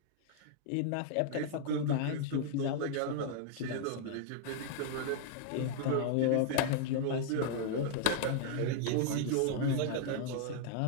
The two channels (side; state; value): both; different; correlation -0.01